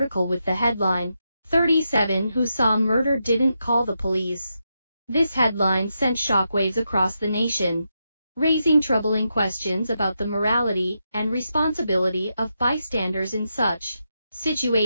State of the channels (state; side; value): inverted; both; correlation -0.85